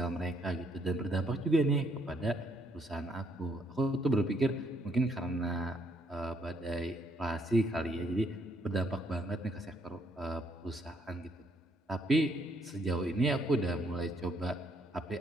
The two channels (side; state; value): both; normal; correlation 0.70